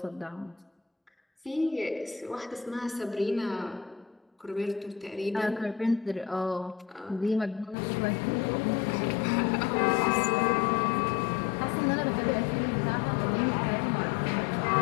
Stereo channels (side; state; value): right; drops out; at 7.8 s